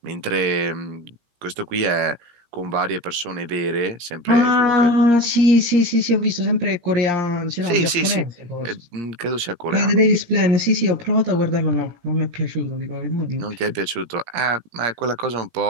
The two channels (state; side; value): late; left; 17 ms